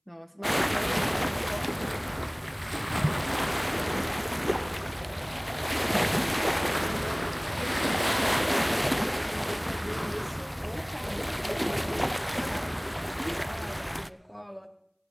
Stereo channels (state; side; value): identical; both; correlation 1.00